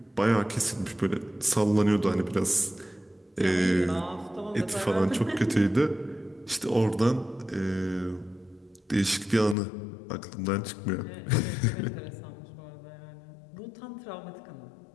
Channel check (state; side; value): drops out; right; at 9.6 s